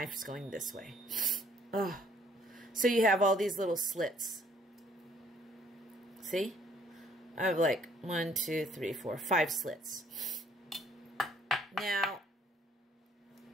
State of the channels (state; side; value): normal; both; correlation 0.62